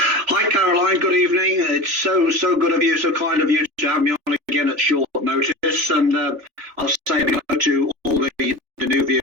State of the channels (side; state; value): left; late; 3.4 ms